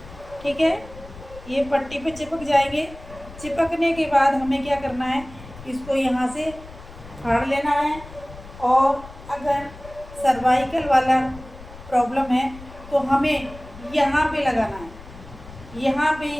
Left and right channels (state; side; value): noise; left; rumble, 17 dB below the sound